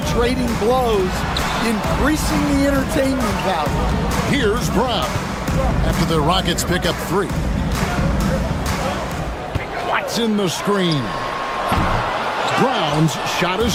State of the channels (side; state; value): both; identical; correlation 1.00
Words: trading blows, increasing the entertainment value. Here's Brown after the Rockets pick up 3. Watson the screen. Brown's shot